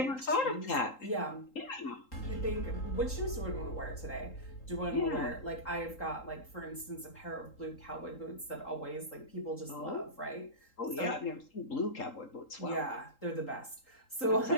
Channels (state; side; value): late; right; 3.8 ms